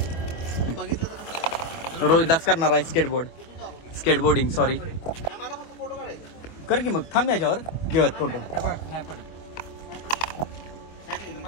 रोहिदास करणार आहे स्केटबोर्डिंग. सॉरी कर की मग. थांब याच्यावर घेऊयात फोटो.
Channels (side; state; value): right; late; 24 ms